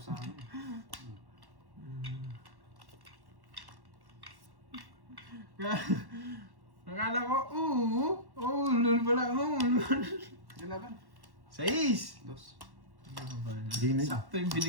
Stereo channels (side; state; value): left; late; 1.1 ms